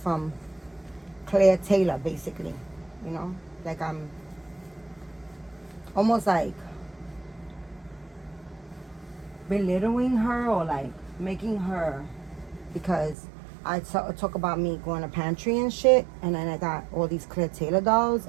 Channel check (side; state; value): left; drops out; at 13.2 s